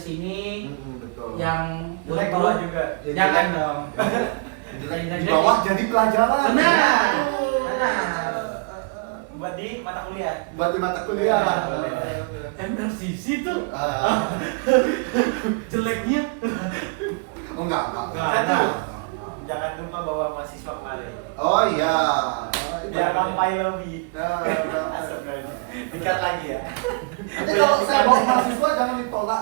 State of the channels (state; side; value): quieter; left; 32.2 dB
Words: Betul. Yang Jelek buruk bawa juga. Yang jangan jelek. dong. Jelek di bawah jadi pelajaran. Benar. Buat di mata kuliah. Buat di mata kuliah. MRCC tuh Ah. jeleknya. Oh enggak. Jangan lupa bawa mahasiswa kemari. Oh iya. Jangan sampai lobby. Nah, Dikat lagi ya. nanti kalau saya bawa mahasiswa jangan ditolak